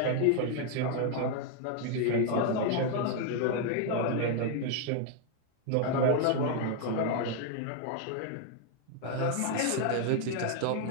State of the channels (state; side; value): different; both; correlation 0.00